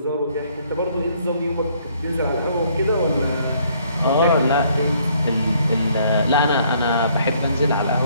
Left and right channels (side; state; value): both; inverted; correlation -0.64